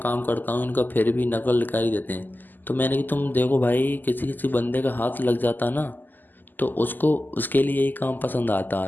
करता हूँ इनका फिर भी नकल निकाल ही देते हैं। तो मैंने कि तुम देखो भाई किसी किसी बंदे का हाथ लग जाता ना तो उसको उसके लिए यही काम पसंद आता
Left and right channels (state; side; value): late; right; 0.087 ms